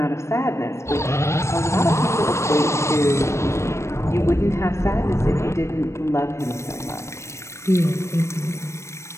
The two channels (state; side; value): late; right; 0.13 ms